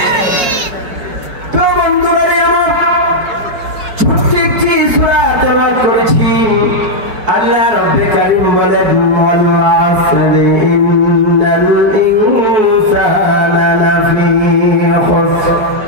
আল্লাহ রাব্বে কারীম বলেন ওয়াল আসরি ইন্নাল ইনসানা লাফি খুসর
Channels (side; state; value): left; late; 5.5 ms